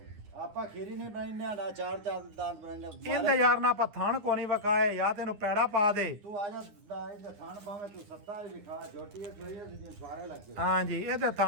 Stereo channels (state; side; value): late; left; 9.8 ms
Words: ਆਪਾਂ ਖੀਰੀ ਨਹੀਂ ਬਣਾਈਨੇ ਨਾ 4 ਦੰਦ ਬਣਾਈਨੇ। ਇਹਦੇ ਯਾਰ ਨਾ ਆਪਾਂ ਥਣ ਕੋ ਨਹੀਂ ਵਕਾਏ ਜਾਂ ਤੈਨੂੰ ਪੈੜਾ ਪਾ ਦੇ। ਤੂੰ ਆ ਜਾ ਇਹਦੇ ਥਾਣ ਪਾਵੇਂ ਤੂੰ 7 ਵਿਖਾ। ਜੋਟੀ ਇਹ ਸੋਈ ਸੀ ਸਾਰੇ ਲੱਗੇ। ਹਾਂਜੀ ਇਹਦੇ